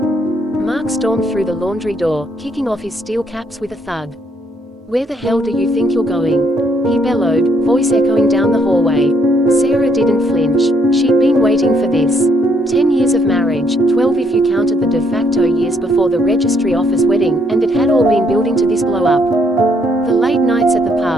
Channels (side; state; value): both; normal; correlation 0.70